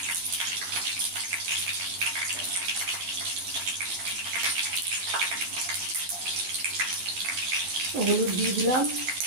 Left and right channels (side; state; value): left; late; 12 ms